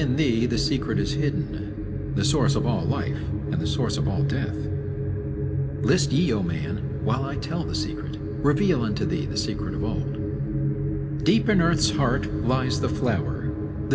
thee the secret is hidden, the source of all life, and the source of all death. List ye, O man, while I tell the secret, reveal unto thee the secret of old. Deep in earth's heart lies the flower,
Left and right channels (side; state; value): both; identical; correlation 1.00